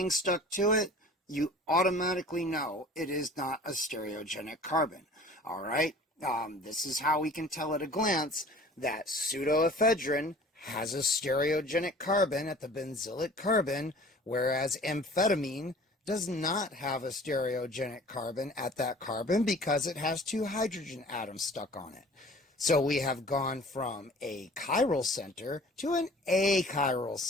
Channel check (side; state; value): both; normal; correlation 0.47